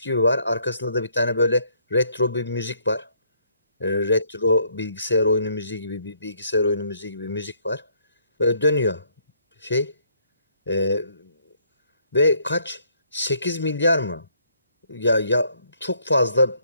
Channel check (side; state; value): both; inverted; correlation -0.67